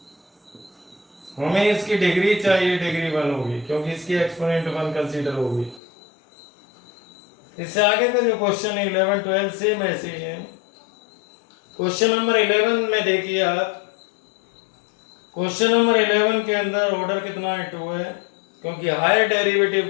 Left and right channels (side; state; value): right; drops out; at 5.8 s